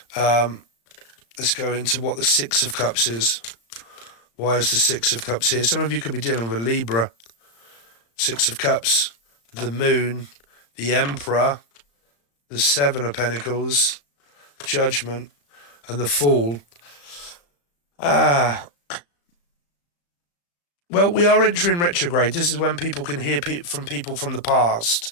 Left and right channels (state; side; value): late; right; 35 ms